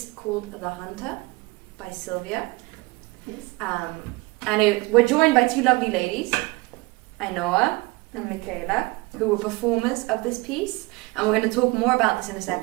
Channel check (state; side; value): quieter; left; 23.6 dB